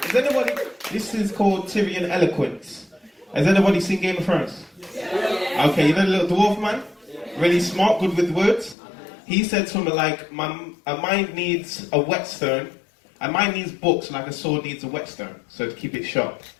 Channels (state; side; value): drops out; right; at 8.8 s